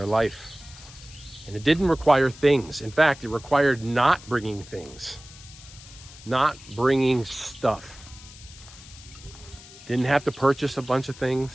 life. And it didn't require things. In fact, it required not bringing things, not bringing stuff. Didn't have to purchase a bunch of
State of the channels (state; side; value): noise; left; hiss, 19 dB below the sound